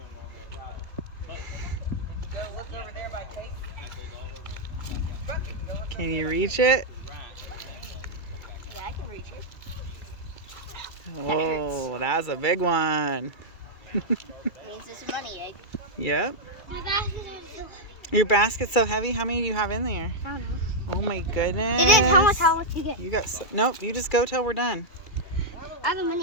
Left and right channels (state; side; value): late; right; 2.2 ms